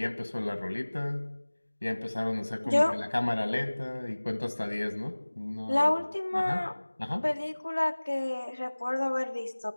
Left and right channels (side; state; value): both; inverted; correlation -1.00